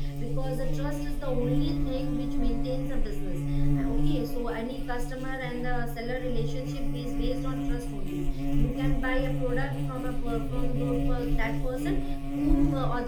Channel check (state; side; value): noise; right; hum, 23 dB below the sound